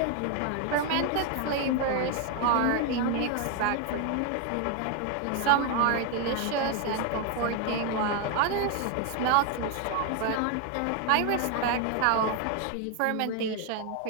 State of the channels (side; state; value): both; different; correlation 0.01